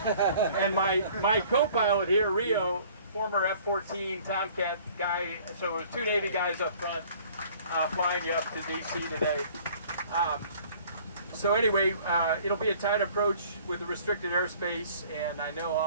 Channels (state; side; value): inverted; both; correlation -0.53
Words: And my co-pilot here, Rio, former F-14 Tomcat guy, so it was 2 Navy guys up front flying you up to DC today. So anyway, it'll be a tight approach with the restricted airspace, and I know